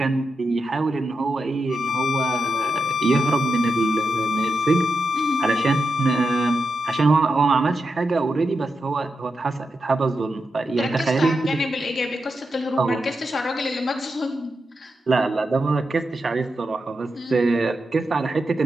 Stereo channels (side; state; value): both; normal; correlation 0.87